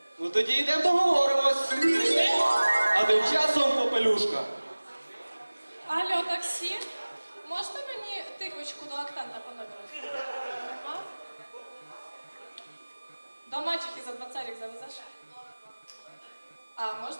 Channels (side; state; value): both; inverted; correlation -1.00